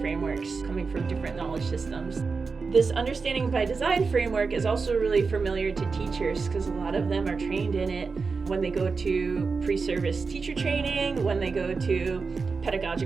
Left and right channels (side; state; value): left; quieter; 4.7 dB